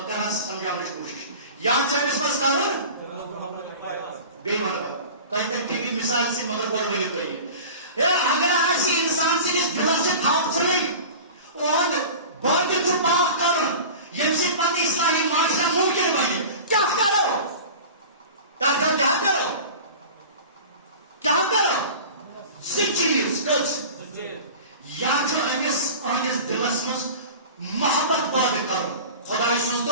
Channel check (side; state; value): both; inverted; correlation -0.36